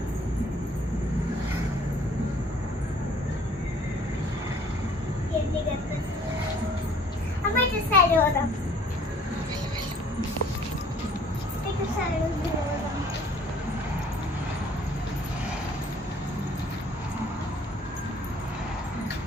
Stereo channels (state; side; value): normal; both; correlation 0.56